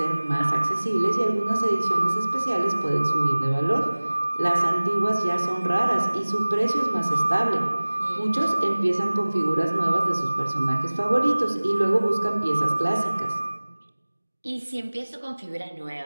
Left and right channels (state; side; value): inverted; both; correlation -1.00